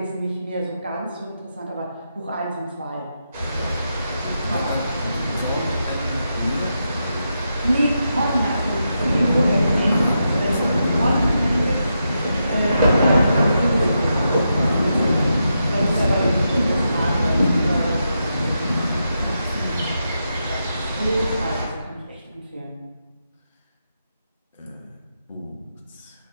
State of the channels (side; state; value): both; inverted; correlation -0.85